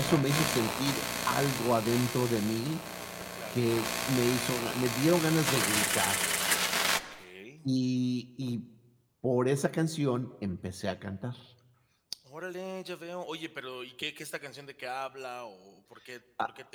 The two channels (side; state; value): both; identical; correlation 1.00